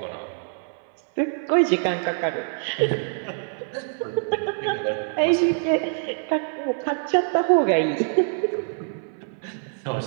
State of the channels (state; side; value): silent; left; 62 dB below the other